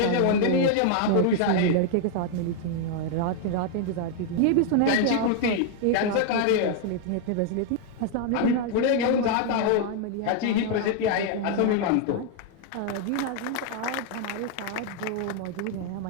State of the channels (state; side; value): different; both; correlation 0.00